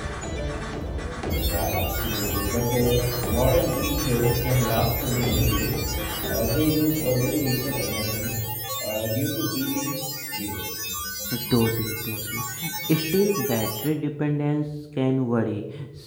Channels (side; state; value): both; identical; correlation 1.00